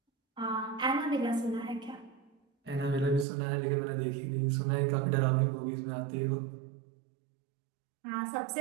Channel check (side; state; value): left; drops out; at 3.2 s